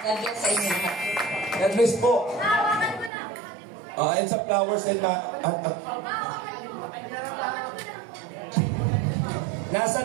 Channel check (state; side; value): drops out; left; at 3.1 s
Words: bless sa inyo. God bless po. And sa flowers and